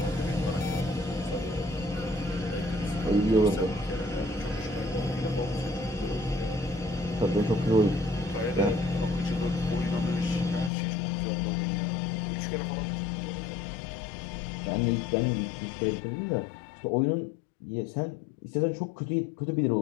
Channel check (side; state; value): right; drops out; at 10.7 s